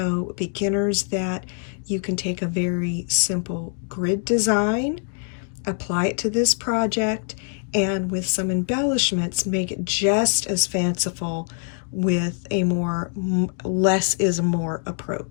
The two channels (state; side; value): silent; right; 58 dB below the other